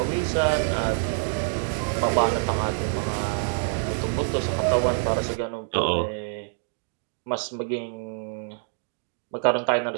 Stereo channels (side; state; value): left; silent; digital silence